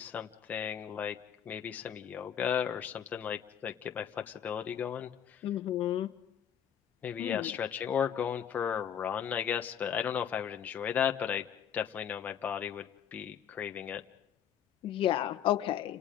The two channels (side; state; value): right; quieter; 9.1 dB